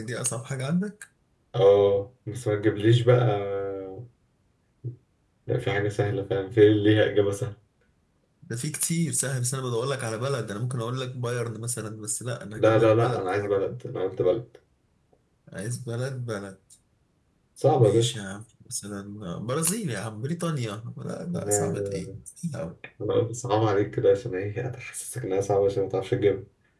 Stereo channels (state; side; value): identical; both; correlation 1.00